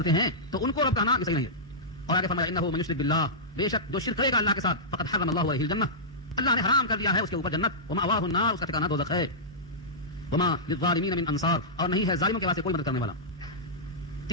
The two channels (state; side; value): normal; both; correlation -0.14